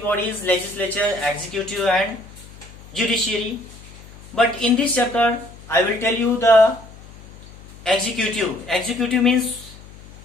legislature, executive and judiciary. But in this chapter I will tell you the executive. Executive means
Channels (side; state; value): left; noise; hum, 19 dB below the sound